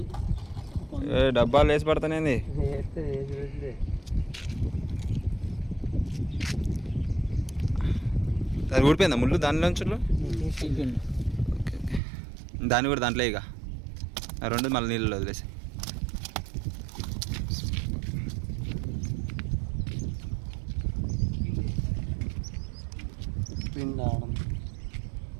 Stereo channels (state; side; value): drops out; left; at 12.0 s